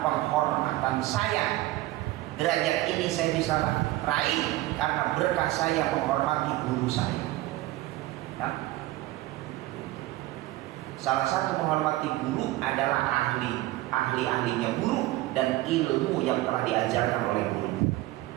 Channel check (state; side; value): quieter; left; 17.6 dB